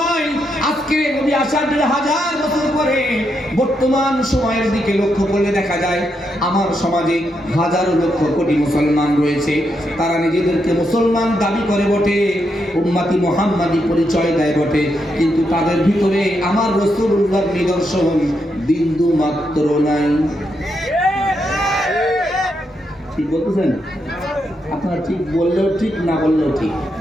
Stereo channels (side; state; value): both; normal; correlation 0.81